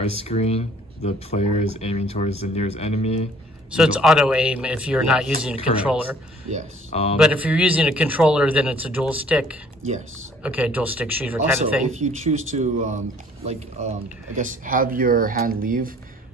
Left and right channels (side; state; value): both; normal; correlation 0.56